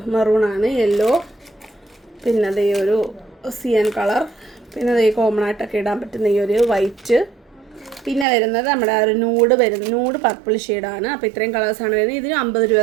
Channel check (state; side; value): drops out; left; at 8.2 s